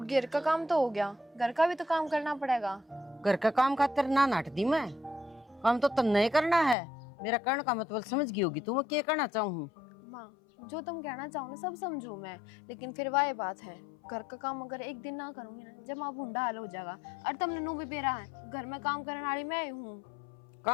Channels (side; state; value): right; drops out; at 6.8 s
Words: घर का काम तो हो गया, घर का भी तो काम करना पड़ेगा। घर का काम खातिर ना नाट दी मैं, काम तो तन नहीं करना है। मेरा कहने का मतलब समझ गई होगी तू मैं क्या कहना चाहूँ। माँ, जो तुम कहना चाहो ना सब समझू मैं, लेकिन फिर वह बात है, घर का काम अगर एक दिन ना करूंगी ना, जब माँ भूंडा हाल हो जाएगा। और तुमने नू भी बेरा है, घर में काम करने वाली मैं ही हूँ।